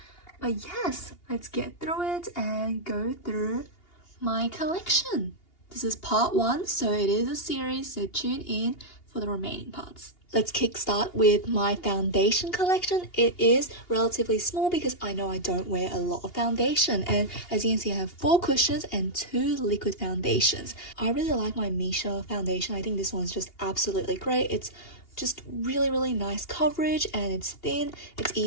But yes, let's get through it and go through my collection. This is part 1, so it is a series, so tune in for the remaining parts. Let's kickstart with my foundation collection. It is relatively small because I know I don't wear a lot of foundation, and as you can see I have 4 cushions and 2 liquid foundations. I really like my Misha foundation. I think this one's just absolutely great. It's just really nice coverage and it's thin, it's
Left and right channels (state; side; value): late; right; 2.8 ms